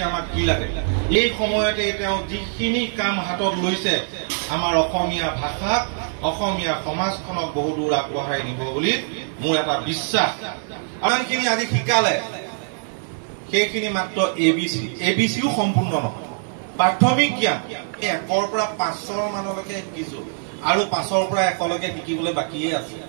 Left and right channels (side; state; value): left; silent; 64 dB below the other